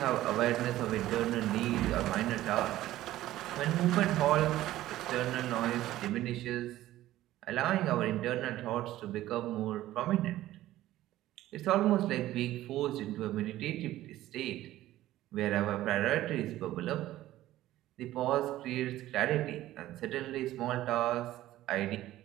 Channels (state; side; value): quieter; left; 14.8 dB